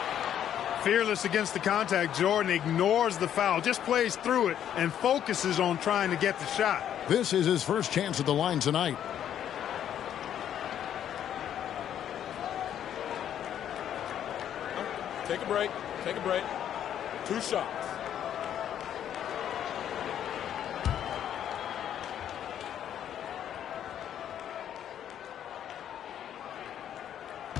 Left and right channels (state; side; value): quieter; right; 10.1 dB